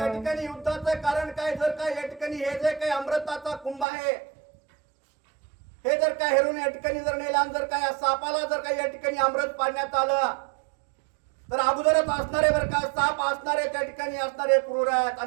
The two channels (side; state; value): left; drops out; at 3.9 s